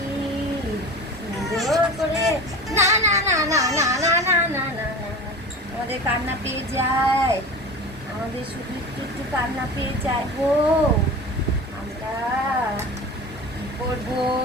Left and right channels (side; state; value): both; normal; correlation 0.34